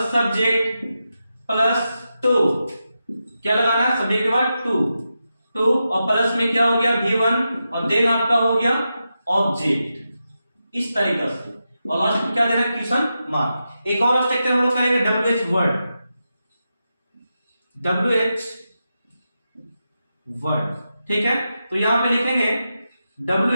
subject plus two, क्या लगाना है, सब्जेक्ट के बाद टू और प्लस में क्या हो गया V1 और देन आपका हो गया ऑब्जेक्ट, इस तरीके से। और लास्ट में क्या देना है, क्वेश्चन मार्क। एक और स्ट्रक्चर हम लोग करेंगे WH वर्ड, ठीक है। तो यहां पे लिखेंगे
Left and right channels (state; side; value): inverted; both; correlation -0.89